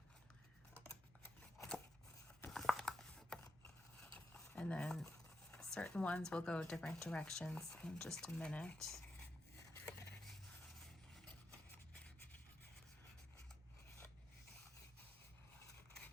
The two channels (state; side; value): normal; both; correlation 0.85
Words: And then certain ones will go different directions in just a minute.